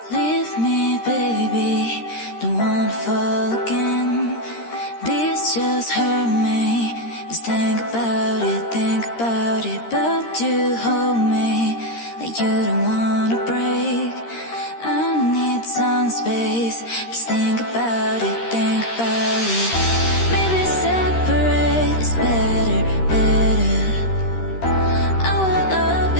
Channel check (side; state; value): right; late; 13 ms